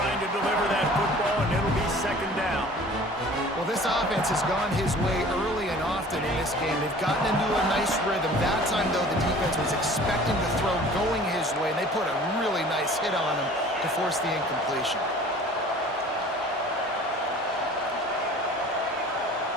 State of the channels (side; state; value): both; normal; correlation 0.47